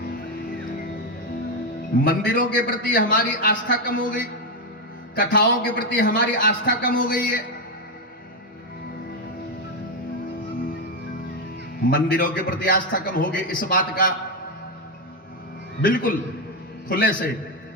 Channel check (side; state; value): both; normal; correlation 0.06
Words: मंदिरों के प्रति हमारी आस्था कम हो गई, कथाओं के प्रति हमारी आस्था कम हो गई है। मंदिरों के प्रति आस्था कम हो गई, इस बात का बिल्कुल खुले से